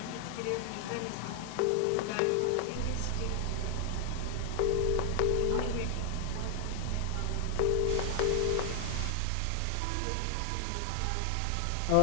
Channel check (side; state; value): both; different; correlation 0.00